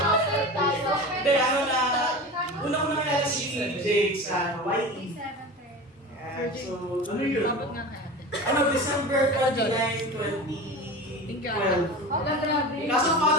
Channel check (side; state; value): both; normal; correlation 0.31